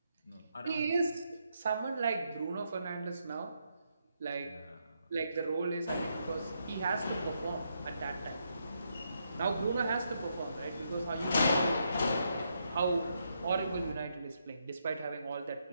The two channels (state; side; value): inverted; both; correlation -0.79